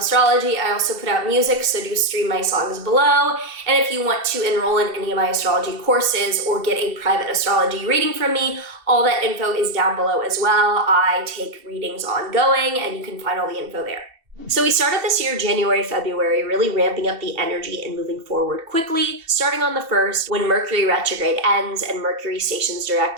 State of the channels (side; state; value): left; late; 2.7 ms